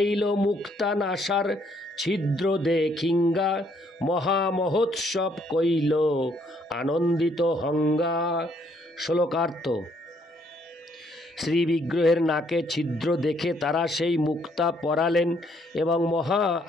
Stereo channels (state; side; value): normal; both; correlation 0.68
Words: মুক্তা নাসার ছিদ্র দেখিঙ্গা, মহামহোৎসব কইল আনন্দিত হঙ্গা। শ্লোকার্থ। শ্রী বিগ্রহের নাকে ছিদ্র দেখে তারা সেই মুক্তা পরালেন এবং মহা